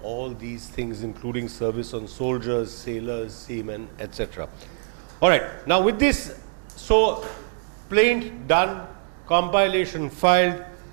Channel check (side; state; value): left; silent; digital silence